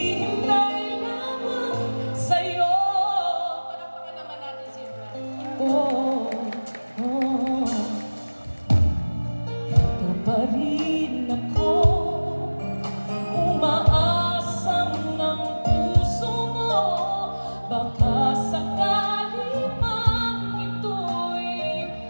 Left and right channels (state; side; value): inverted; both; correlation -1.00